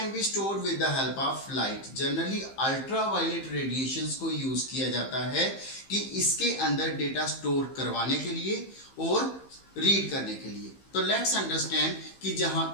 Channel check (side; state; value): right; late; 15 ms